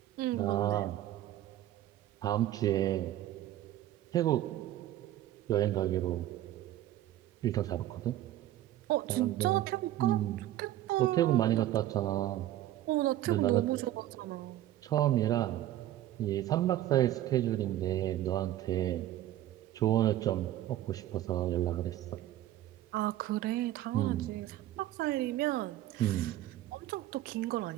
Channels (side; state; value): left; quieter; 13.6 dB